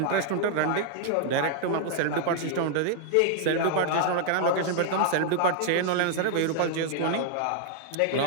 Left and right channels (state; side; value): different; both; correlation 0.00